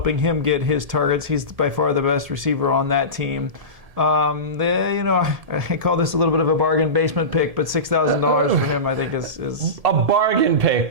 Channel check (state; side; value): late; left; 1.7 ms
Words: him get his targets. He's by far the best receiver on that team. I call this a little bit of a bargain basement pick, but $6,000 for him, I think, is a bargain